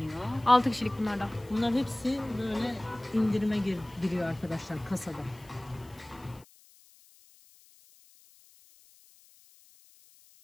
6 kişilik bunlar da. Bunlar hepsi böyle indirime giriyor arkadaşlar kasada.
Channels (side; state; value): left; noise; hiss, 27 dB below the sound